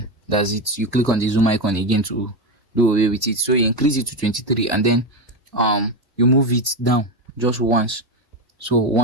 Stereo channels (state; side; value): normal; both; correlation 0.14